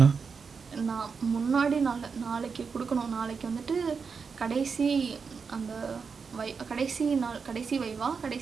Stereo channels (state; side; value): quieter; left; 5.5 dB